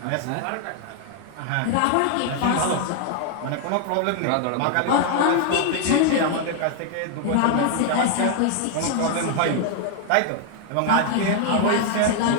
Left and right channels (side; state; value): both; different; correlation 0.00